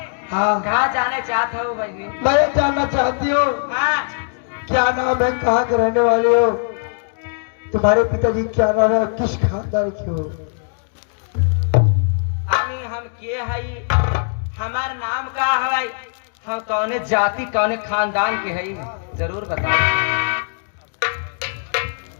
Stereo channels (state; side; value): silent; right; digital silence